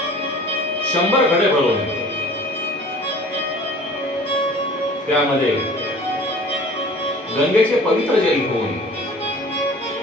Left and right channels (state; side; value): normal; both; correlation 0.46